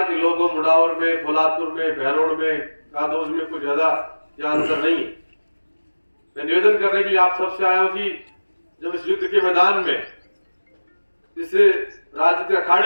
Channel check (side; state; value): both; inverted; correlation -1.00